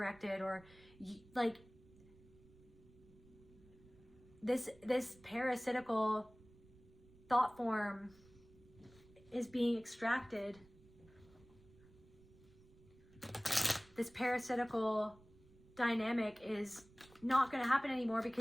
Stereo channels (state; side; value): noise; right; rumble, 24 dB below the sound